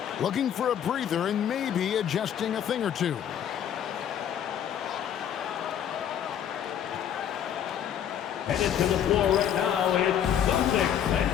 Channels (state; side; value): quieter; right; 9.5 dB